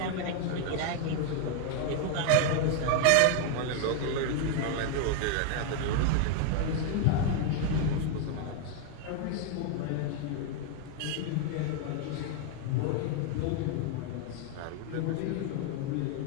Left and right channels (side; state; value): both; different; correlation 0.00